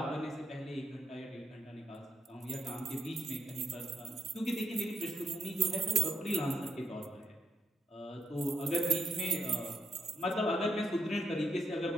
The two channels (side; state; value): both; normal; correlation 0.81